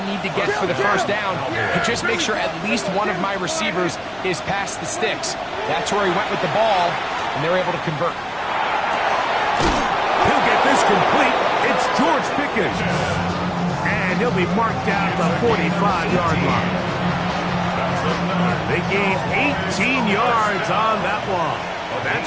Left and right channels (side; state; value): both; identical; correlation 1.00